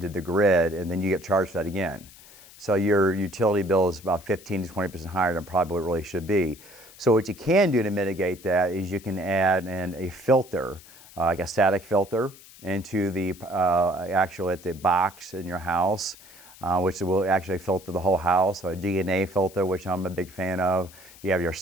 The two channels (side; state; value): left; noise; hiss, 21 dB below the sound